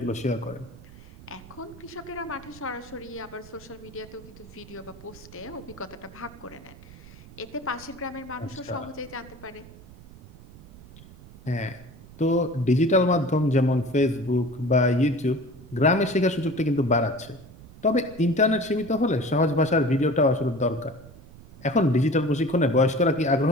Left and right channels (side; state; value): right; noise; rumble, 20 dB below the sound